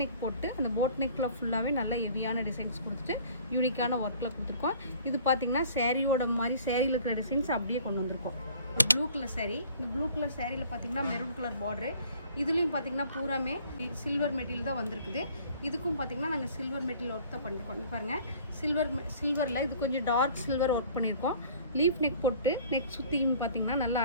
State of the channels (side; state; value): both; inverted; correlation -0.52